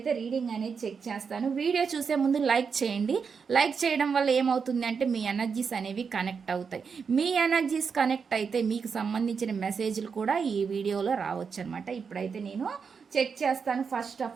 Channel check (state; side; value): quieter; left; 5.9 dB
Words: రీడింగ్ అనేది చెక్ చేస్తాను. వీడియో చూసే ముందు లైక్ చేయండి. లైక్ చేయడం వల్ల ఏమవుతుంది అంటే మీ ఎనర్జీస్ అనేవి కనెక్ట్ అవుతాయి. మీ ఎనర్జీస్ కనెక్ట్ అయితే మీకు సంబంధించిన మెసేజ్లు కూడా ఈ వీడియోలో రావచ్చు అనమాట. ఇప్పుడైతే నేను చెక్ చేస్తాను. ఫస్ట్